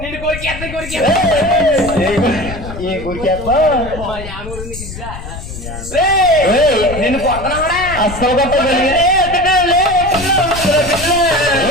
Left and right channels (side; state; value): left; noise; rumble, 11 dB below the sound